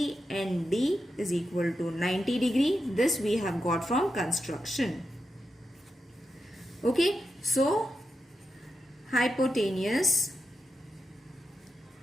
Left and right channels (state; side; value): normal; both; correlation 0.88